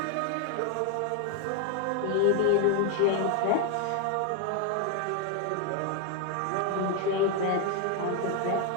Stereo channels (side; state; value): both; different; correlation 0.01